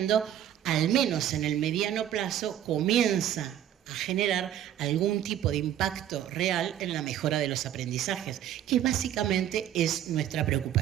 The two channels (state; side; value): quieter; left; 11.1 dB